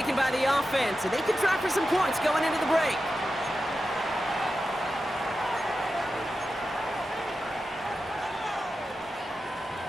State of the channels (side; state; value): both; normal; correlation 0.91